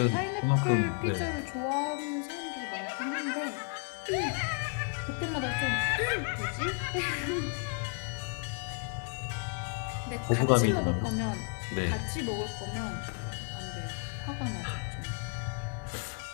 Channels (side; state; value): right; quieter; 38.2 dB